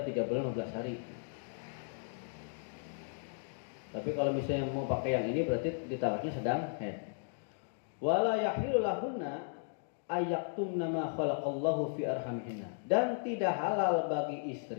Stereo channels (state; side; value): silent; right; digital silence